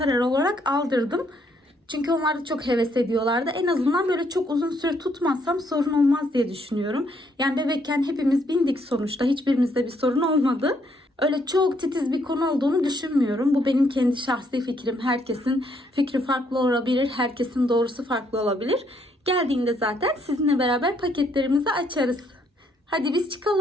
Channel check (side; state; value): both; normal; correlation 0.71